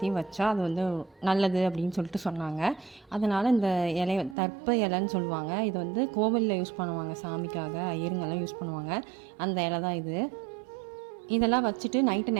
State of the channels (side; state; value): left; drops out; at 4.4 s